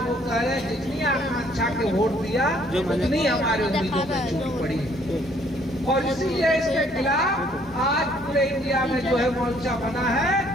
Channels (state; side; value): normal; both; correlation 0.63